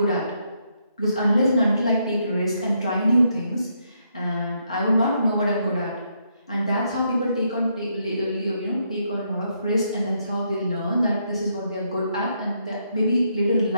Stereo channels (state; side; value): inverted; both; correlation -0.76